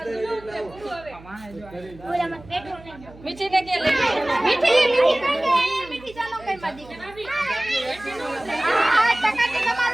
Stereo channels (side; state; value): right; noise; hum, 20 dB below the sound